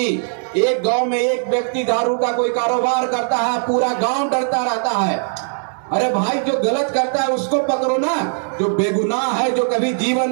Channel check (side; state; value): left; silent; digital silence